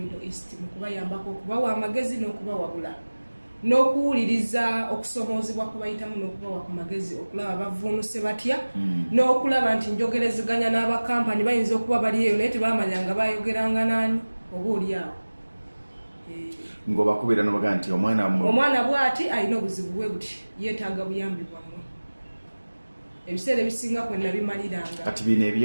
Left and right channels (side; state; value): both; inverted; correlation -1.00